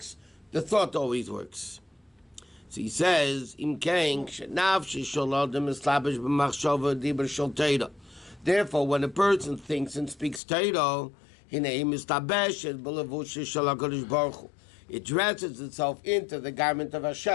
the thought always works. So he says, therefore, when a person thinks and speaks Torah, it dresses itself into the garment of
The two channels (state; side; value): drops out; right; at 10.4 s